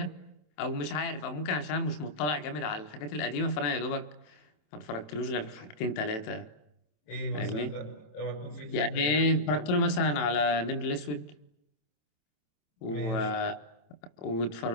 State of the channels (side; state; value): right; late; 27 ms